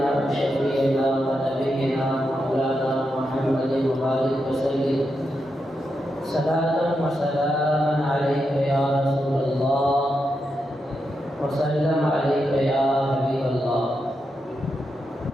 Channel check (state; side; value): normal; both; correlation 0.85